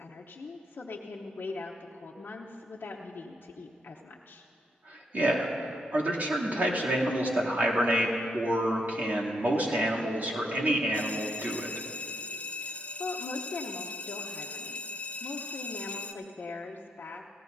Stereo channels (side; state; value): both; normal; correlation 0.77